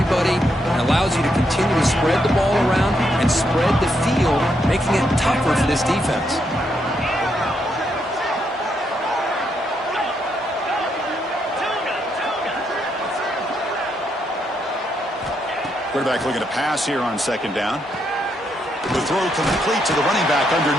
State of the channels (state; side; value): normal; both; correlation 0.78